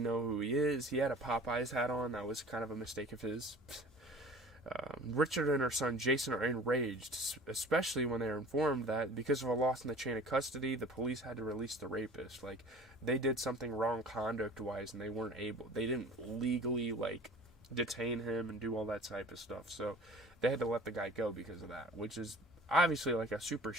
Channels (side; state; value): both; normal; correlation 0.44